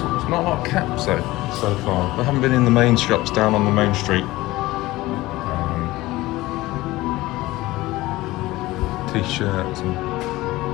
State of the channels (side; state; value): right; quieter; 18.6 dB